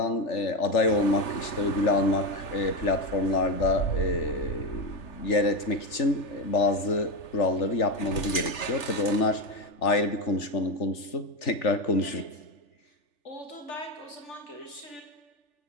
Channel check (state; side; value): late; right; 3.4 ms